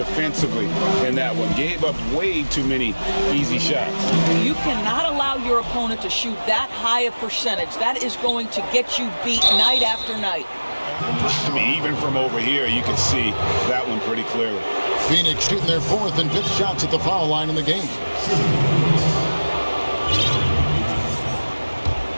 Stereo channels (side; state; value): both; inverted; correlation -1.00